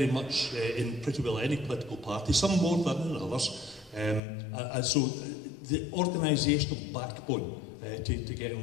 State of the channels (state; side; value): drops out; right; at 4.2 s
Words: much in pretty well any political party, some more than in others. And so the organisational backbone to